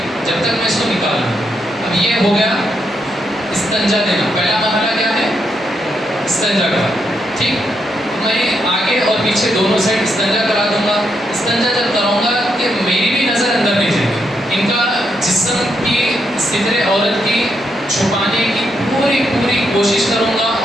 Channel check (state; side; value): normal; both; correlation 0.80